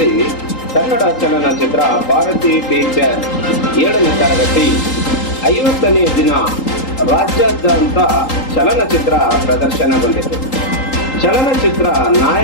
ಕನ್ನಡ ಚಲನಚಿತ್ರ ಭಾರತಿ ಟೀಚರ್ 7ನೇ ತರಗತಿ 50ನೇ ದಿನ ರಾಜ್ಯಾದ್ಯಂತ ಚಲನಚಿತ್ರ ಪ್ರದರ್ಶನಗೊಂಡಿತು. ಚಲನಚಿತ್ರ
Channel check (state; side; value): late; right; 3.8 ms